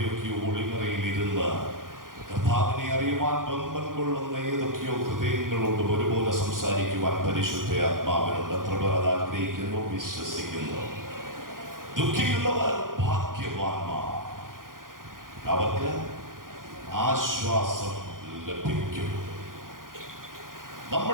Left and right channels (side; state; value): left; late; 0.90 ms